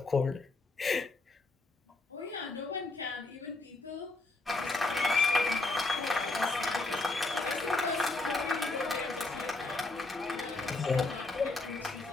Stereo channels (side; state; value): right; quieter; 3.3 dB